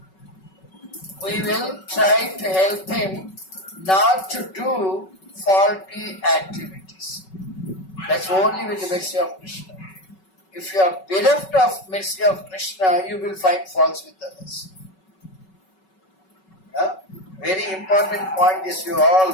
We will try to help him not to do faulty activities. That's only with the mercy of Krishna. If you are bereft of mercy of Krishna, you will find faults with others. Very important point, this you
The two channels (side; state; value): right; late; 5.3 ms